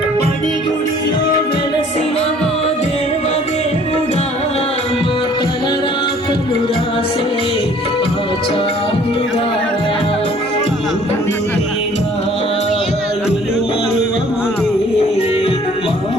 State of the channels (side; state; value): both; normal; correlation 0.55